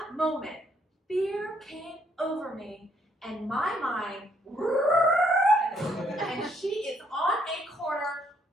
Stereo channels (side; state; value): both; normal; correlation 0.70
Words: moment, fear came over me, and my mind, and she is on a corner,